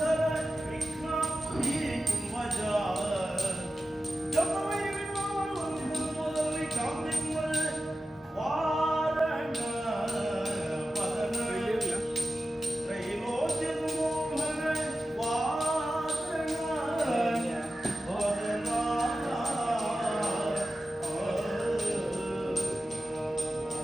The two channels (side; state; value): both; normal; correlation 0.93